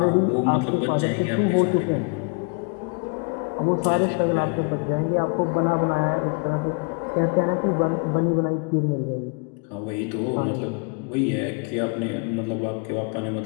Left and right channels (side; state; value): right; quieter; 36.2 dB